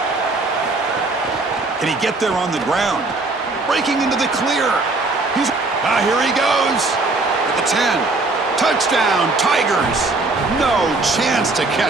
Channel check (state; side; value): quieter; left; 3.3 dB